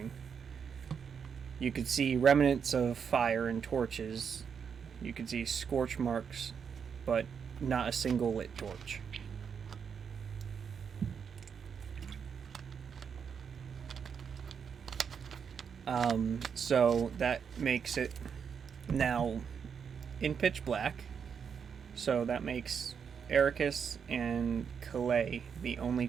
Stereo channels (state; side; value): quieter; left; 6.9 dB